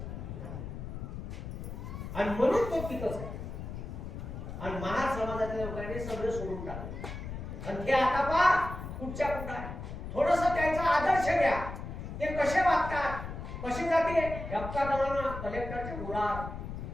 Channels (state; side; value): noise; left; rumble, 8 dB below the sound